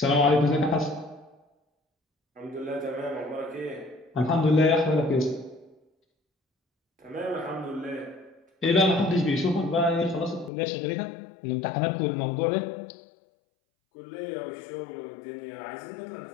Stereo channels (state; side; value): drops out; right; at 10.5 s